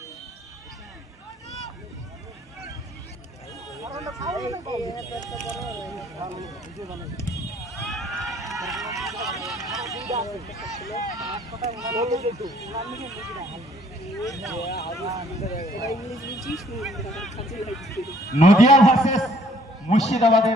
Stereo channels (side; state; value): both; normal; correlation 0.61